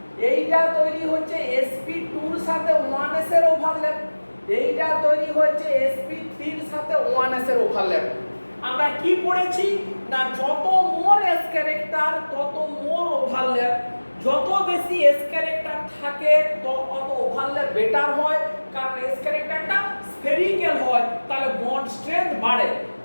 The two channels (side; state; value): both; inverted; correlation -1.00